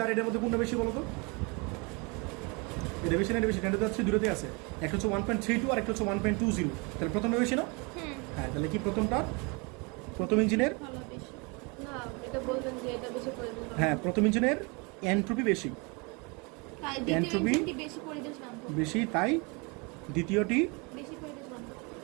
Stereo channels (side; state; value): left; quieter; 29.9 dB